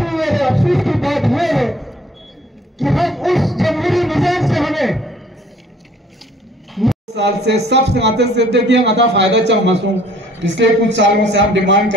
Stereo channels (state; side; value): normal; both; correlation 0.57